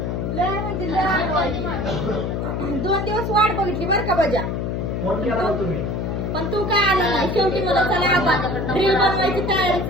लय म्हणजे लय आगाऊ. 2 दिवस वाट बघितली बर का बजा. फोन केला होता तुम्ही पण तू काय आला नाही. शेवटी मला चला आपण रील बनवायची तयारीच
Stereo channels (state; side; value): noise; left; hum, 2 dB below the sound